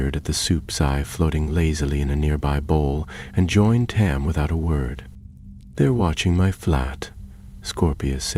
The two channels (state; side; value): identical; both; correlation 1.00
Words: at the soup's eye floating lazily in a nearby bowl, and joined Tam without a word. They're watching my flat, Scorpius